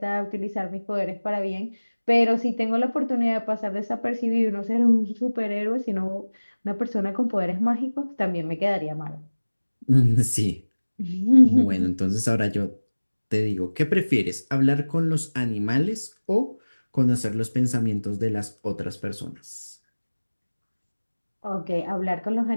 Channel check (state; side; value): inverted; both; correlation -1.00